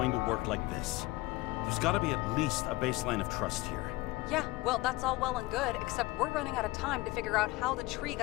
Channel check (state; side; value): quieter; right; 20.5 dB